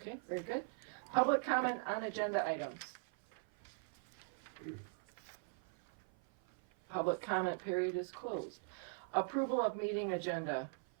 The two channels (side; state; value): left; silent; 51 dB below the other